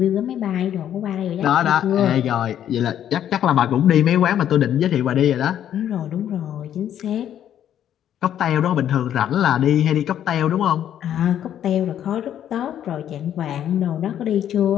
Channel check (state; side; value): quieter; right; 10.4 dB